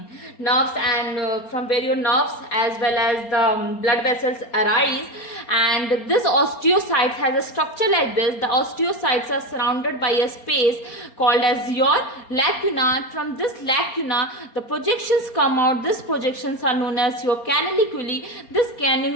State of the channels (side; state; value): right; late; 4.3 ms